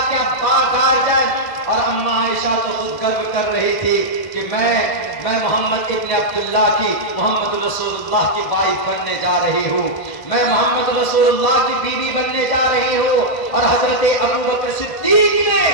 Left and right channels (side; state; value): right; late; 1.6 ms